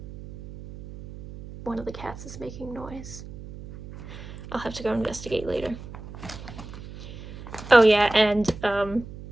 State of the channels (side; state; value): right; noise; hum, 13 dB below the sound